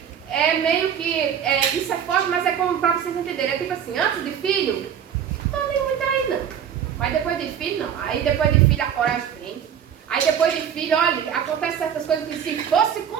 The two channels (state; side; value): quieter; left; 8.7 dB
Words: meio que, isso é forte, mas é como para vocês entenderem. É tipo assim, antes de filho, não tô nem muito aí não. Mas depois de filho, não. Aí depois de filho a coragem vem. Aí depois de filho, olha, acontece certas coisas que se fosse